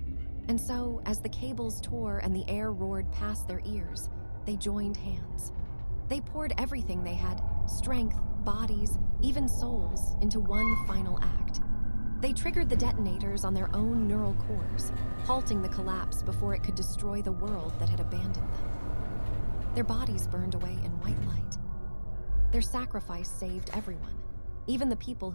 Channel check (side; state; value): both; inverted; correlation -1.00